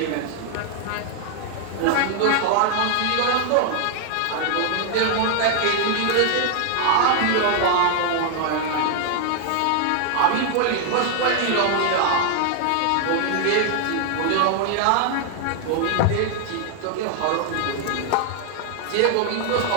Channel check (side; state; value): both; different; correlation 0.00